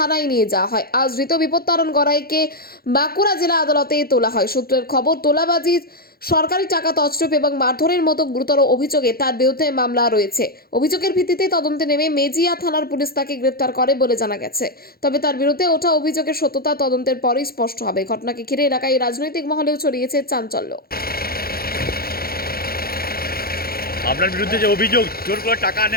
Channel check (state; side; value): late; right; 0.44 ms